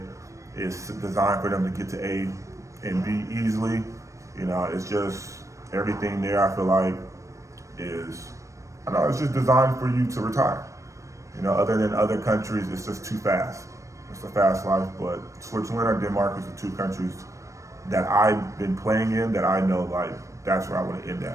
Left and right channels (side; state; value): left; late; 0.15 ms